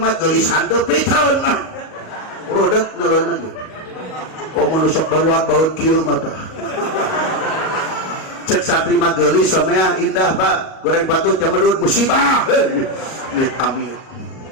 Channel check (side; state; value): right; late; 38 ms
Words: geulisan teu piteun mah. Rodat naleun lagi. Komo nu sok baruak baut kieu mata cek santri mah geulis samea indah Pak goreng patut jamedut musibah amit amit